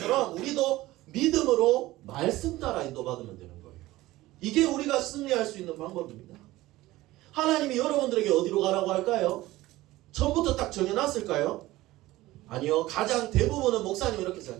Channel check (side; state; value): left; quieter; 17.6 dB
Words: 우리도 믿음으로 말씀 따라 인도받으면 되는 거예요. 이게 우리가 승리할 수 있는 방법입니다. 하나님이 여러분들에게 어디로 가라고 할까요? 처음부터 딱 정해놨을까요? 아니요. 가장 대부분은 목사님이 이렇게